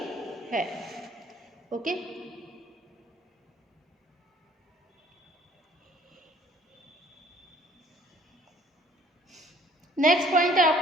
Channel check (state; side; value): normal; both; correlation 0.57